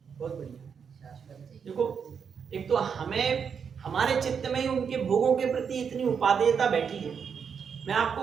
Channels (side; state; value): left; quieter; 6.7 dB